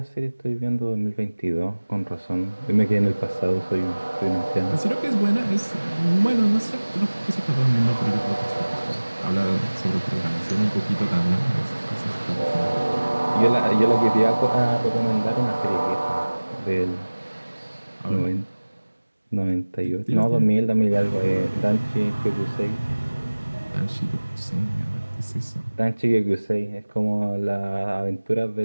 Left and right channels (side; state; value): both; inverted; correlation -1.00